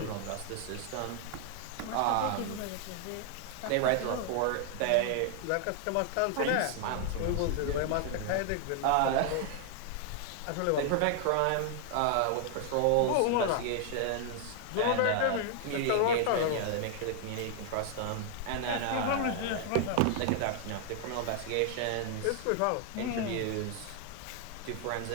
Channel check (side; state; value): both; different; correlation 0.00